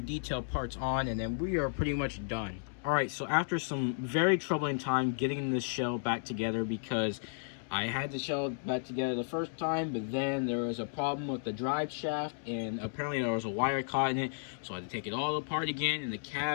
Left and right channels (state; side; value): silent; right; digital silence